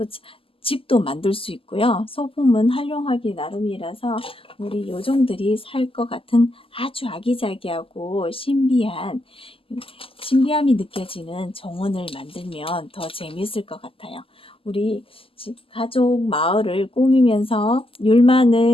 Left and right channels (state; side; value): late; right; 0.26 ms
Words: 집도 만들 수 있고요. 소품은 활용하기 나름이라서 우리 요정들이 살 것 같은 아주 아기자기하고 신비함이 느껴지는 정원을 만들면 더 재미있을 것 같아요. 우리 가족 마을을 꾸미면서